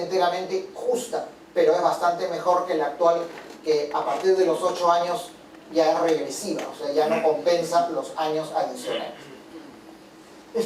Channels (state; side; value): identical; both; correlation 1.00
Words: justa, pero es bastante mejor que la actual, que a partir de los 8 años ya es regresiva, o sea, ya no compensa los años adicionales.